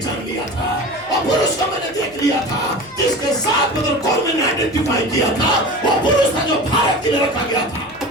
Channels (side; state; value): left; noise; hum, 27 dB below the sound